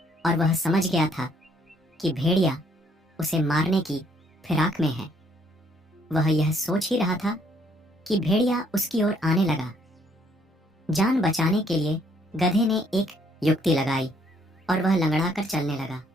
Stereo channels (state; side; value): normal; both; correlation 0.67